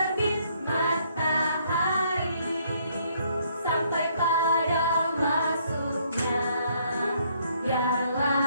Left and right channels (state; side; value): inverted; both; correlation -0.67